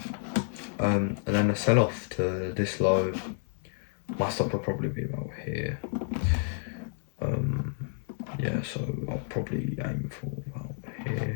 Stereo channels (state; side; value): silent; right; digital silence